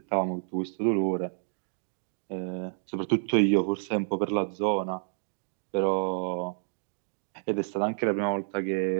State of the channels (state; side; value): silent; left; digital silence